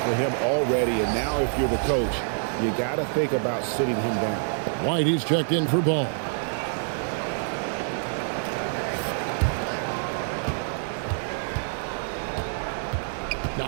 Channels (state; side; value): silent; left; 59 dB below the other